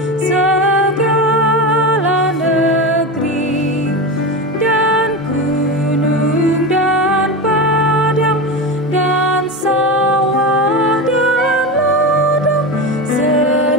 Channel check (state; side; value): normal; both; correlation 0.21